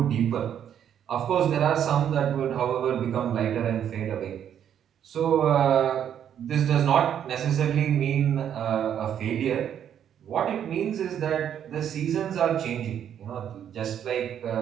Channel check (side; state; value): left; quieter; 9.4 dB